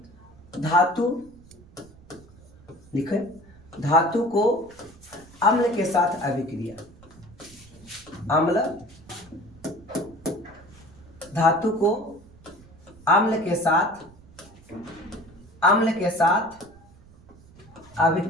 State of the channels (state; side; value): noise; right; rumble, 24 dB below the sound